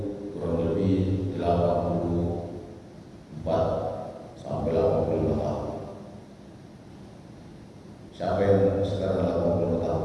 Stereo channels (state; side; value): identical; both; correlation 1.00